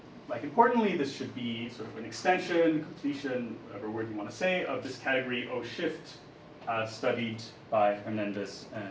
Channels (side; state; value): both; identical; correlation 1.00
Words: like importantly, this should be sort of an extension, completion, whatever word you want to say, of this category O shift studied by Hernandez